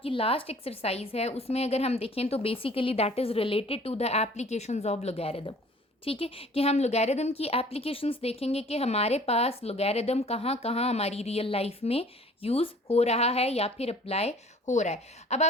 लास्ट एक्सरसाइज है उसमें अगर हम देखें तो basically that is related to the applications of logarithm, ठीक है, कि हम लॉगरिथम की एप्लीकेशंस देखेंगे कि हमारे पास लॉगरिथम कहाँ कहाँ हमारी रियल लाइफ में यूज़ हो रहा है या फिर अप्लाई हो रहा है। अब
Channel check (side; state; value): both; normal; correlation 0.51